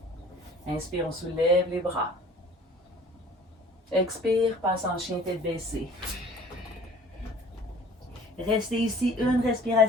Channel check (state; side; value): normal; both; correlation 0.49